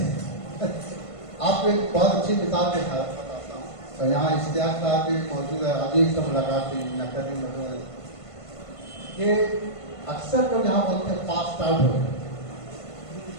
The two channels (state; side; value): late; right; 1.5 ms